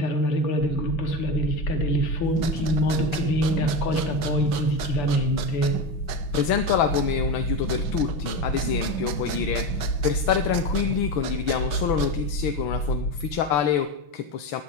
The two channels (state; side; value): late; right; 6.1 ms